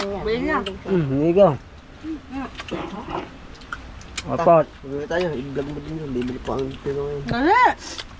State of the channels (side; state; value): both; identical; correlation 1.00